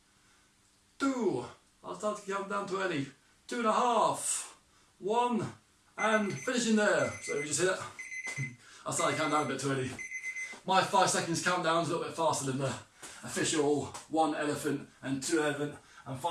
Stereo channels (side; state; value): both; identical; correlation 1.00